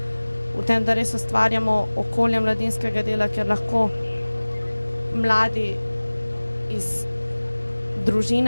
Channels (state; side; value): inverted; both; correlation -1.00